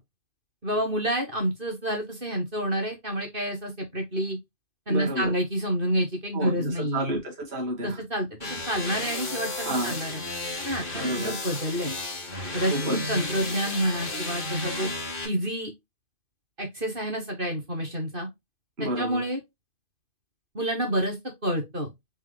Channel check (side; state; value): left; late; 2.5 ms